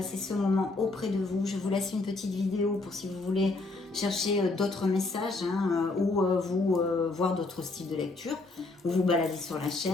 ce moment auprès de vous. Je vous laisse une petite vidéo pour si vous voulez chercher d'autres messages ou vous voir d'autres styles de lecture ou vous balader sur la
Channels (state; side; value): quieter; right; 3.3 dB